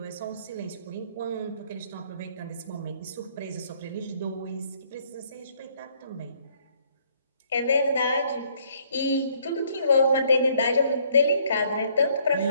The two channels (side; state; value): both; inverted; correlation -0.65